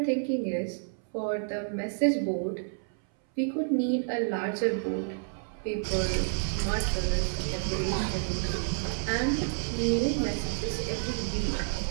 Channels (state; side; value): silent; left; 58 dB below the other